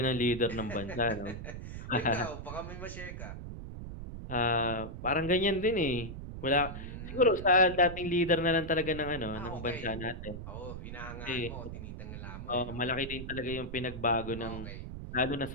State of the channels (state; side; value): noise; right; rumble, 9 dB below the sound